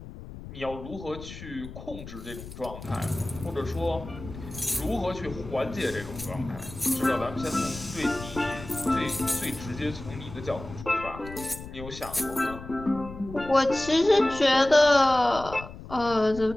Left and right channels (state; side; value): noise; left; rumble, 13 dB below the sound